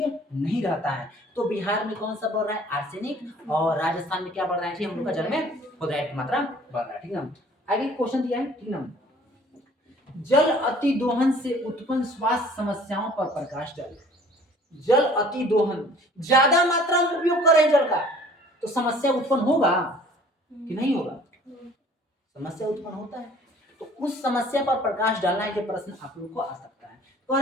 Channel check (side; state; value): both; normal; correlation 0.52